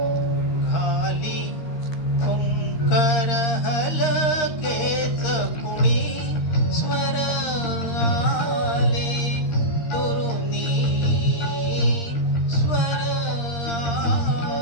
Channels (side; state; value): right; late; 13 ms